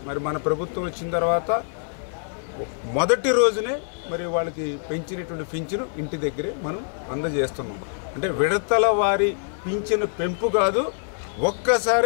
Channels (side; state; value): right; silent; digital silence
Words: మరి మన ప్రభుత్వం వచ్చిన తర్వాత మొదటి రోజునే మరి వాళ్ళకి పెంచినటువంటి పింఛను ఇంటి దగ్గరే మనం అందజేస్తున్నాం. అంటే విడతల వారి పింఛను పెంపు కాదు,